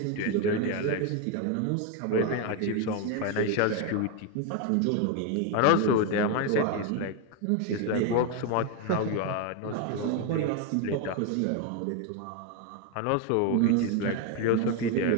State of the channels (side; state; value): both; different; correlation 0.01